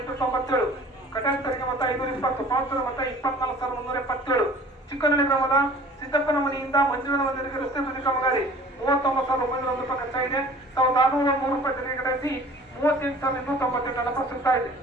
ಕಟಾಕ್ಷರಿಗೆ ಮತ 520, ಪಾಲ್ಸರ ಮತ 24,377. ಚಿಕ್ಕನಹಳ್ಳಿ ಗ್ರಾಮದ ಸಿದ್ದಪ್ಪನ ಮನೆಯಿಂದ ಮಂಜುಳನ ಮಂದಿರಕ್ಕೆ ರಸ್ತೆ ಬದಿ ಕಾಮಗಾರಿ 39,901 ರೂಪಾಯಿ ಖರ್ಚಾಗಿದೆ. 1,603 ರೂಪಾಯಿ ತೆರಿಗೆ ಕಟಾಯಿಸಿ 38,298 ಹಣ ಸಿಗ್ತಾ ಇದೆ.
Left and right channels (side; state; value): both; normal; correlation 0.47